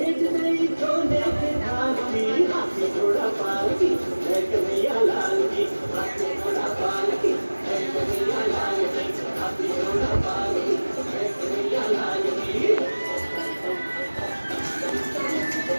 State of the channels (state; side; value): inverted; both; correlation -1.00